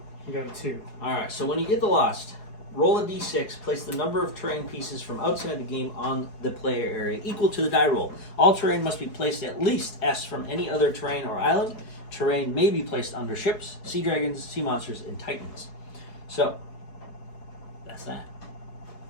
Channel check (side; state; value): right; late; 4.7 ms